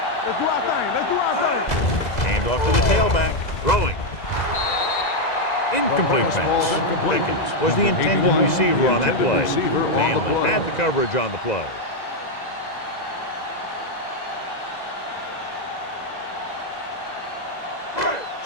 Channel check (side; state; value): right; late; 2.0 ms